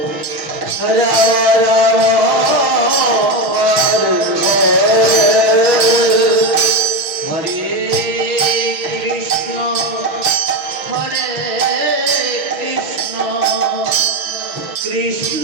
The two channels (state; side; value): late; left; 6.1 ms